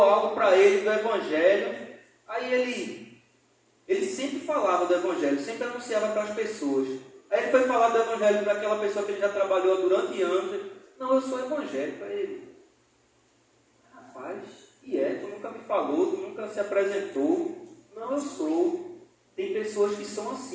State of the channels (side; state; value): both; identical; correlation 1.00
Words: algo para ele do Evangelho. Aí ele sempre falava do Evangelho, sempre anunciava para as pessoas. Aí ele foi falar do Evangelho para aquela pessoa que ele já trabalhou durante anos. Não, eu sou evangélico. Para ele: rapaz, tu nunca me falou, tu nunca se apresentou. Não, eu sou. Tem pessoas que são